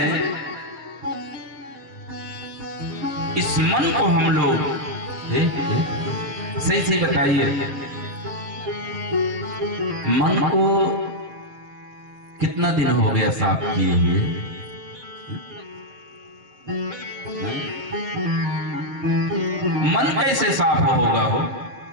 इस मन को हम लोग सही सही बताइए, मन को कितना दिन हो गया साफ किए हुए? मन कैसे साफ होगा? हो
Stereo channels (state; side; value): late; left; 7.4 ms